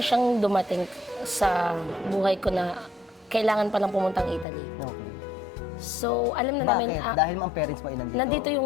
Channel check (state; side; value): drops out; right; at 4.5 s